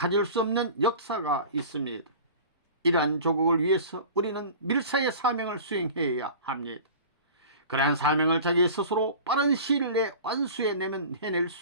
수 없는 역사가 있습니다. 이러한 조국을 위해서 우리는 밀사의 사명을 수행해야 합니다. 그러한 사명을 자기 스스로 빠른 시일 내에 완수해내면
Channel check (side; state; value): both; inverted; correlation -0.39